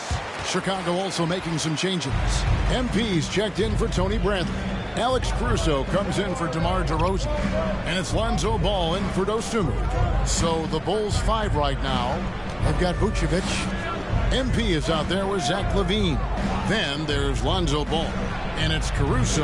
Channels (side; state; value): both; identical; correlation 1.00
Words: Chicago also making some changes. MP's checked in for Tony Bradley. Alex Caruso comes in for DeMar DeRozan, and it's Lonzo Ball in for Dosunmu. So the Bulls 5 right now. They've got Vucevic. MP is out there with Zach LaVine. Then there's Lonzo Ball, and it's